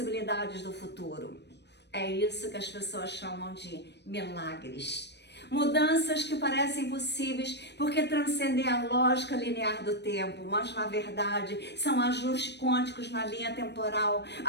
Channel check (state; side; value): late; right; 0.50 ms